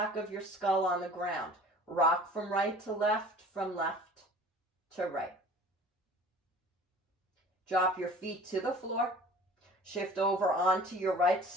of your skull on the ground. Rock from right to left, from left to right. Drop your feet to the floor. Shift over onto your right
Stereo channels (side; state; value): both; normal; correlation 0.45